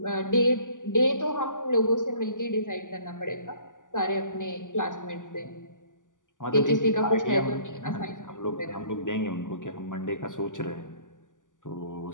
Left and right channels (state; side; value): late; right; 0.87 ms